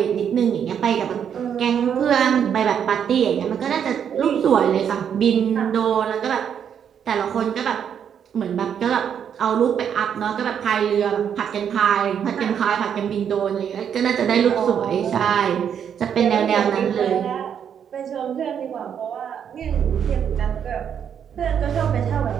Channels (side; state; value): left; quieter; 8.3 dB